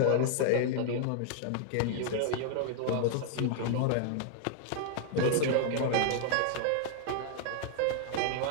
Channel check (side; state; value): both; different; correlation 0.00